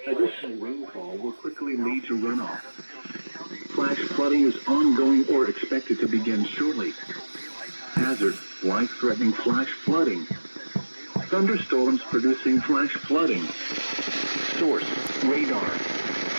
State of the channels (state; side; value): inverted; both; correlation -1.00